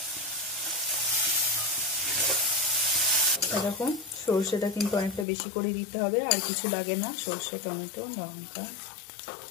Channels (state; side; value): drops out; right; at 5.2 s